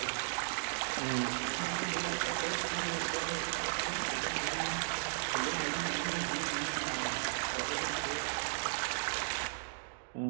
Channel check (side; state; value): left; silent; digital silence